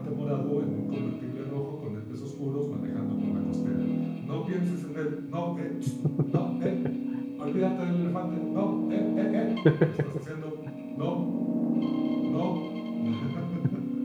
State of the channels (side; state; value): both; identical; correlation 1.00